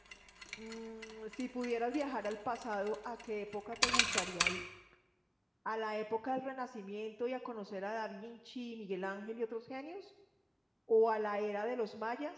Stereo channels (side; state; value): both; identical; correlation 1.00